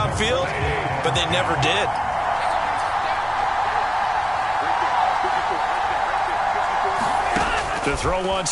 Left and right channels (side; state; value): both; identical; correlation 1.00